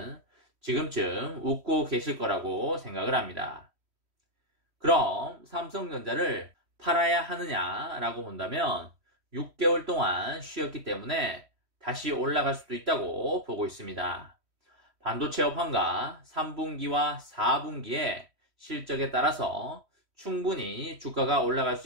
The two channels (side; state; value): left; late; 3.1 ms